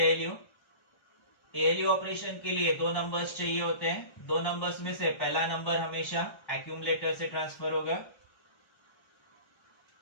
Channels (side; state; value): right; late; 1.3 ms